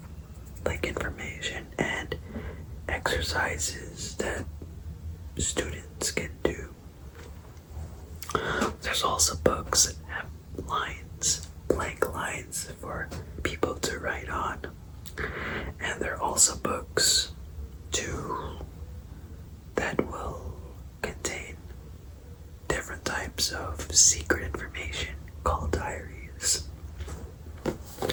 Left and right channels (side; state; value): both; identical; correlation 1.00